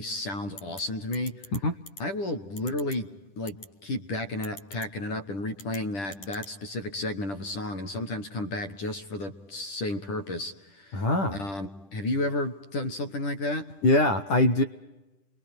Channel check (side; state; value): right; late; 10 ms